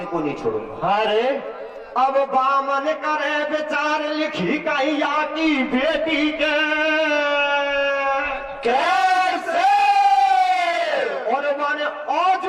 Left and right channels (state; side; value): identical; both; correlation 1.00